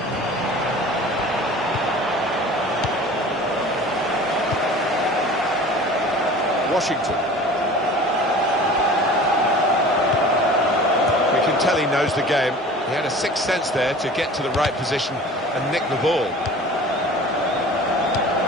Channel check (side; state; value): both; normal; correlation 0.42